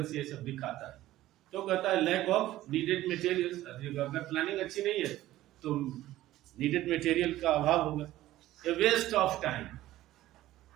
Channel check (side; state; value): left; quieter; 15.2 dB